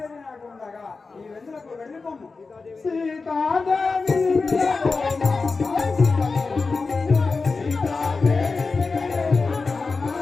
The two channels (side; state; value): right; quieter; 4.2 dB